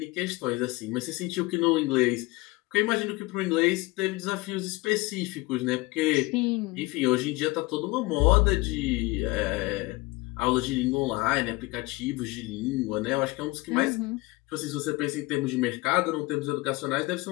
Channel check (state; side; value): quieter; right; 22.1 dB